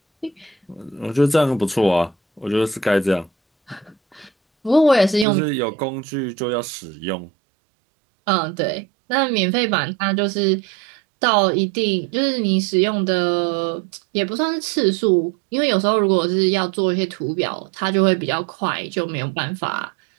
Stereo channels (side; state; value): left; drops out; at 5.2 s